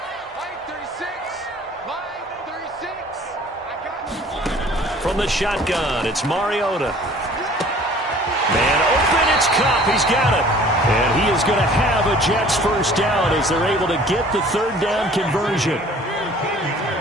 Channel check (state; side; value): normal; both; correlation 0.50